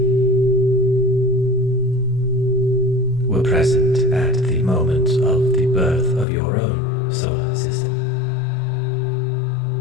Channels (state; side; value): drops out; right; at 6.2 s